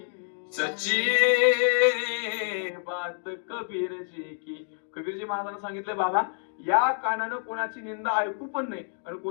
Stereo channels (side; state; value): right; silent; digital silence